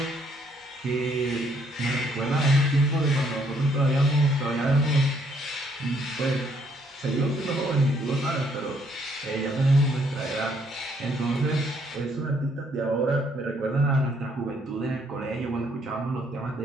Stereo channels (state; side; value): normal; both; correlation 0.68